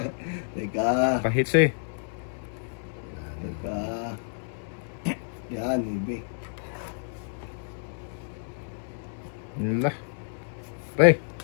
Teka. pahits eh. Teka. Yan, baby. Nila. Pre,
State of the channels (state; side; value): silent; right; digital silence